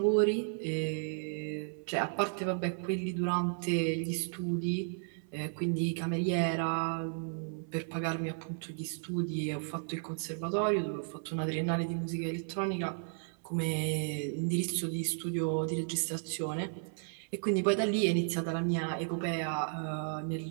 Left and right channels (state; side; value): silent; left; 55 dB below the other